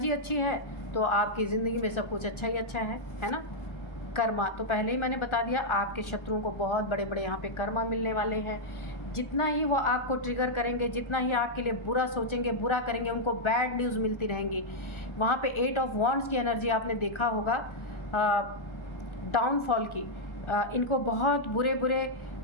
अच्छी है तो आपकी ज़िंदगी में सब कुछ अच्छा ही अच्छा है ना। कर्मा तो पहले ही मैंने बता दिया, आपके शत्रुओं को बहुत बड़े बड़े यहाँ पे कर्मा मिलने वाले हैं। जितना ही वो आपको ट्रिगर करेंगे, जितना ही आपके लिए बुरा सोचेंगे, बुरा करेंगे, उनको बैड न्यूज़ मिलती रहेंगी। वहाँ पे 8 ऑफ वॉन्ड्स की एनर्जी आपने देखा होगा, डाउनफॉल की। इनको बहुत बुरे बुरे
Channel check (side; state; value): right; late; 1.4 ms